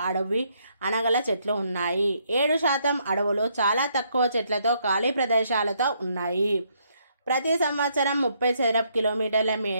అడవి అనగల చెట్లు ఉన్నాయి. 7% అడవులు చాలా తక్కువ చెట్లతో ఖాళీ ప్రదేశాలతో ఉన్నాయి. ప్రతి సంవత్సరం 30 చదరపు కిలోమీటర్ల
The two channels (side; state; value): both; inverted; correlation -0.72